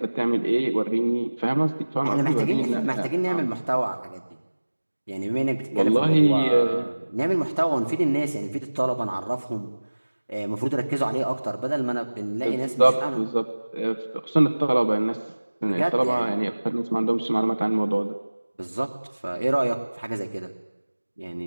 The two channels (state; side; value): inverted; both; correlation -1.00